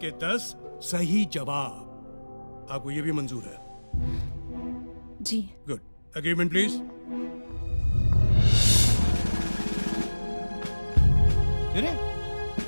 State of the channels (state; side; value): inverted; both; correlation -1.00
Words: के 10 सही जवाब। आपको ये भी मंजूर है? जी। गुड। Agreement please. अरे